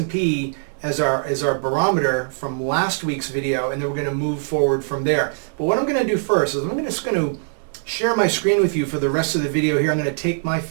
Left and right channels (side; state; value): left; silent; digital silence